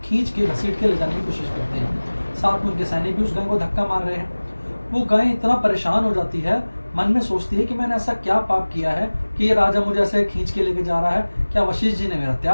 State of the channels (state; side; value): inverted; both; correlation -1.00